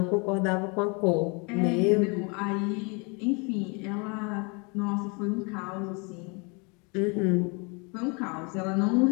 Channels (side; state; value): right; quieter; 31.8 dB